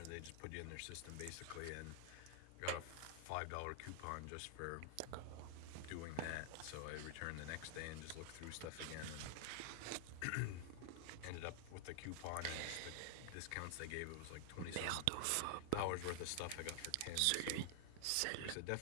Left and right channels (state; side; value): different; both; correlation 0.00